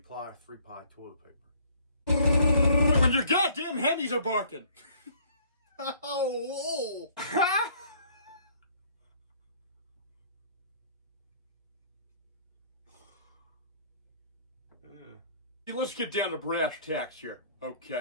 or 3-ply toilet paper? When your goddamn hendies are barking. Oh, Let's get down to brass tacks here.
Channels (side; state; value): both; inverted; correlation -0.58